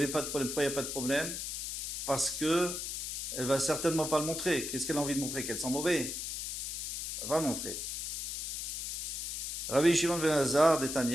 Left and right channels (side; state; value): left; noise; hiss, 4 dB below the sound